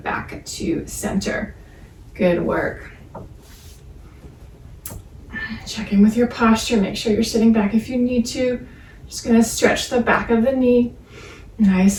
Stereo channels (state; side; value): identical; both; correlation 1.00